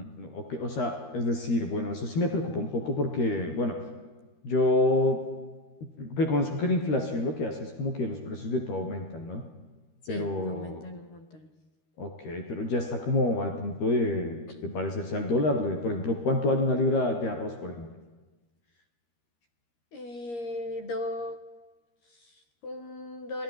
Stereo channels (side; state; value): right; late; 13 ms